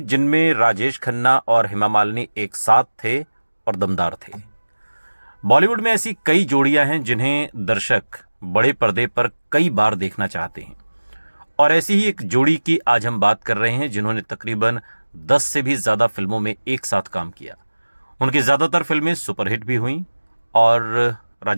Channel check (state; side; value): inverted; both; correlation -1.00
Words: जिनमें राजेश खन्ना और हेमा मालिनी एक साथ थे और दमदार थे। बॉलीवुड में ऐसी कई जोड़ियां हैं जिन्हें दर्शक बड़े पर्दे पर कई बार देखना चाहते हैं, और ऐसी ही एक जोड़ी की आज हम बात कर रहे हैं जिन्होंने तकरीबन 10 से भी ज़्यादा फिल्मों में एक साथ काम किया। उनकी ज़्यादातर फिल्में सुपरहिट भी हुईं, और